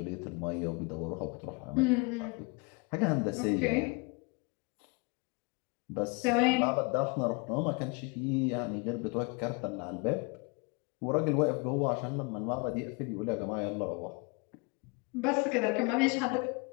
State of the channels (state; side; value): quieter; right; 30.4 dB